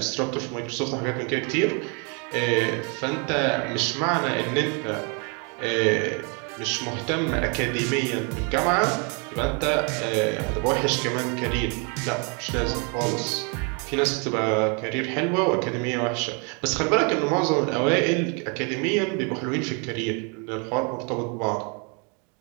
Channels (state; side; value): quieter; left; 35.0 dB